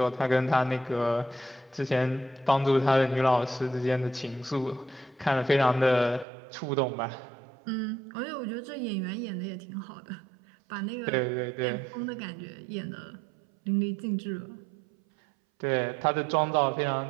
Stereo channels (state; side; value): drops out; left; at 6.2 s